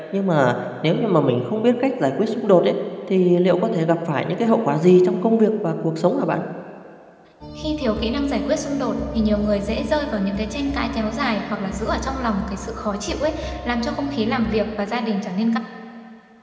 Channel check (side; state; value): both; identical; correlation 1.00